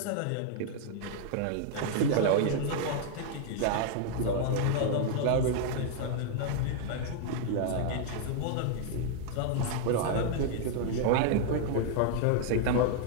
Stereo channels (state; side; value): different; both; correlation 0.00